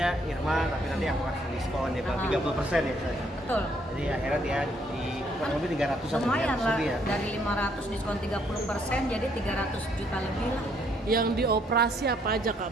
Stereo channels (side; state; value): both; normal; correlation 0.68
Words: Irma tapi nanti aku kasih diskon dia bilang 30% ya saya. Betul. Jadi akhirnya dia di kurang lebih 300 Lumayan lah, ya. dari 500 diskon 30% jadi 300 juta lebih lah. Yang dioperasi apa aja